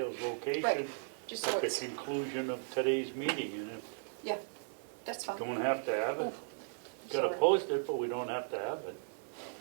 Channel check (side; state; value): left; silent; digital silence